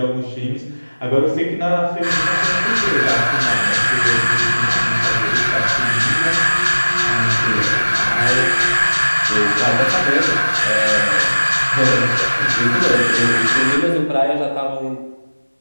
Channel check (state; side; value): inverted; both; correlation -1.00